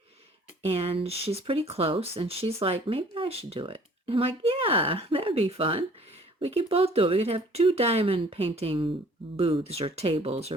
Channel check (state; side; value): normal; both; correlation 0.54